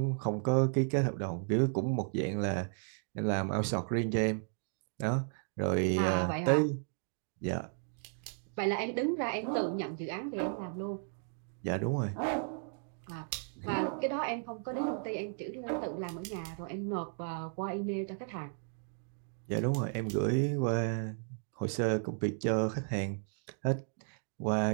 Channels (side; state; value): left; silent; 55 dB below the other